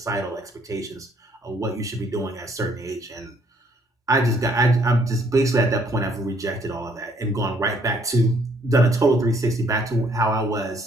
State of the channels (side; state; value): both; normal; correlation 0.65